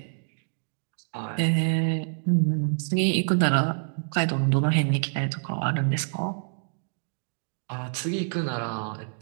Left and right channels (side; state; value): left; silent; digital silence